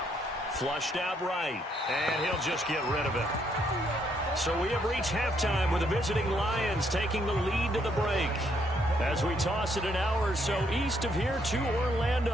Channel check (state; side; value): normal; both; correlation 0.72